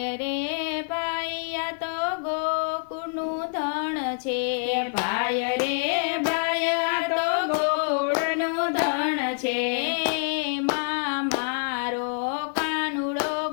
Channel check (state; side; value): silent; right; digital silence